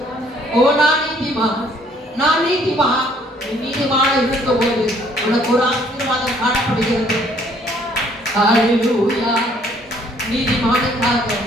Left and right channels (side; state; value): both; normal; correlation 0.62